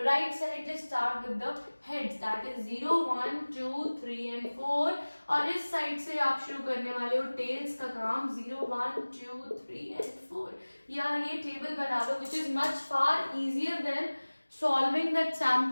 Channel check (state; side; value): inverted; both; correlation -1.00